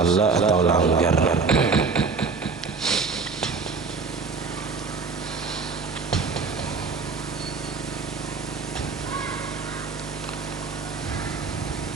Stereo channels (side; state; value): left; quieter; 4.6 dB